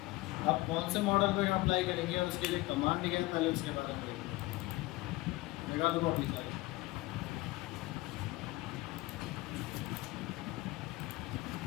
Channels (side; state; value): right; quieter; 20.3 dB